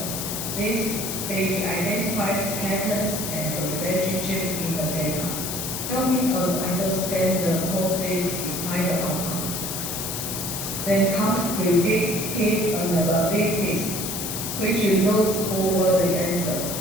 This stage identifies patterns and relationships in the data, helping us understand the causes behind the outcomes. Then comes predictive analytics, which looks forward the answer,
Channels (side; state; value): left; noise; hiss, 4 dB below the sound